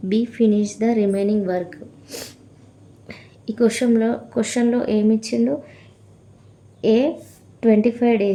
B finish the remaining work? ఈ క్వశ్చన్లో ఏమి ఇచ్చిండు? A 25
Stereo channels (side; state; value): both; identical; correlation 1.00